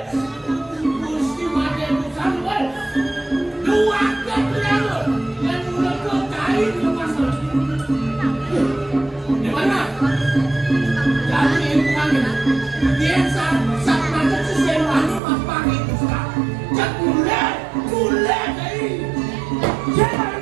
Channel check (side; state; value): left; drops out; at 15.2 s